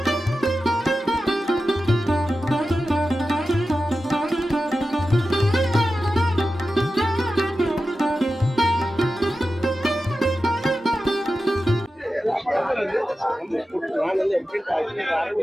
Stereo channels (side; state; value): both; normal; correlation 0.92